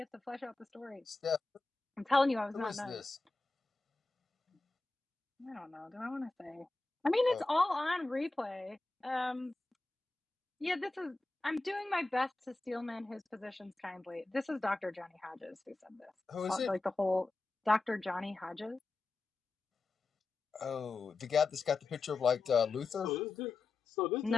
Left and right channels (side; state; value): right; quieter; 3.4 dB